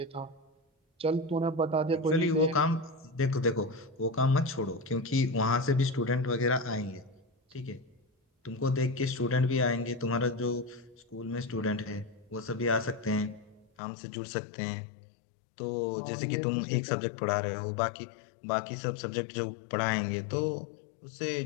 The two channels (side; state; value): right; drops out; at 13.7 s